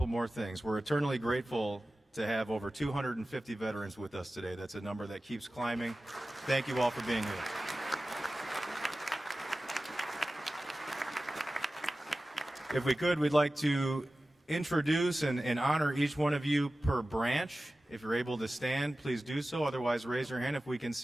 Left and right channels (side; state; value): both; normal; correlation 0.95